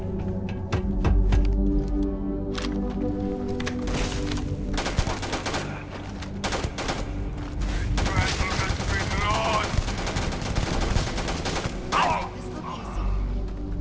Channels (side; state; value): both; identical; correlation 1.00